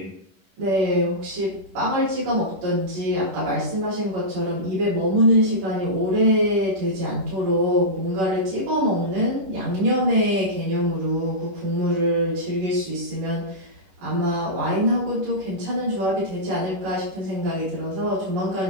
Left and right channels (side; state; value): left; late; 11 ms